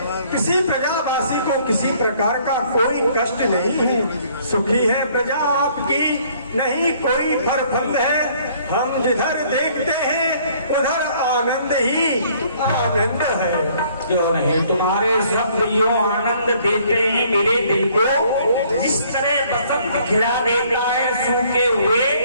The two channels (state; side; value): inverted; both; correlation -0.61